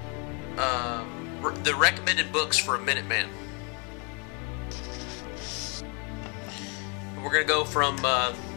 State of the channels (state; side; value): quieter; right; 34.5 dB